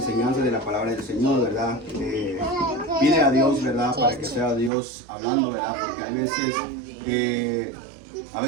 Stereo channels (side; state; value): left; drops out; at 4.7 s